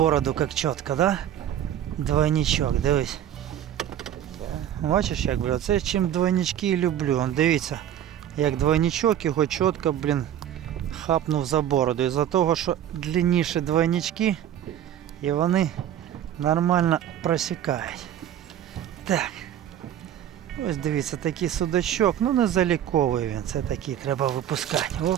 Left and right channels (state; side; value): quieter; left; 10.7 dB